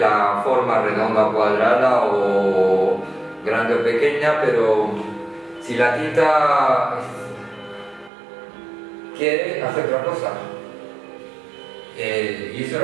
la forma redonda o cuadrada o grande o pequeña, pero si la tinta quiere hacer otra cosa. Y eso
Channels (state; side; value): drops out; left; at 8.1 s